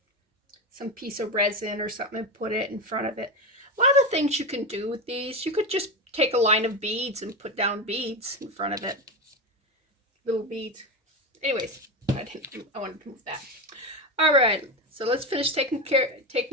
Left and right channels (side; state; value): both; normal; correlation 0.17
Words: piece of resin or something and put it in front of it. A lot of things you can do with these. You could just take a line of beads and put down beads in front of it. Little beads. Anyways, I wanted to move that. All right, so let's finish taking